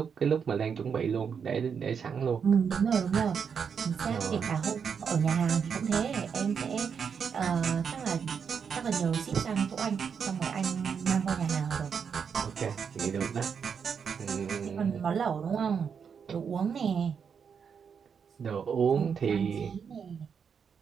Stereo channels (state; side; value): quieter; left; 6.7 dB